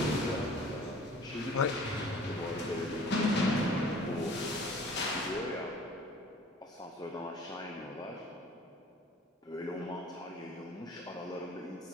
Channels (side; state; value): both; normal; correlation 0.49